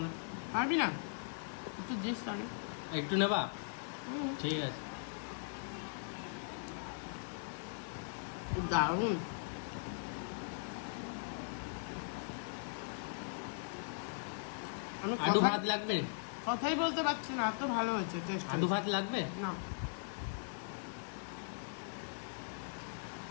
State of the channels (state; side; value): silent; right; digital silence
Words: না। পারবি না? একটু দিস তাহলে। একটু নেবা? হুম, ঠিক আছে। দারুণ। আমি আলু ভাত লাগবে? কথাই বলতে পারছি না, এত ভালো হয়েছে টেস্ট। আলু ভাত লাগবে? না,